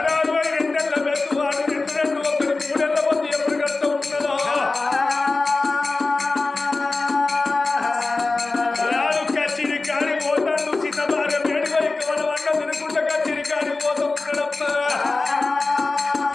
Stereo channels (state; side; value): quieter; right; 3.5 dB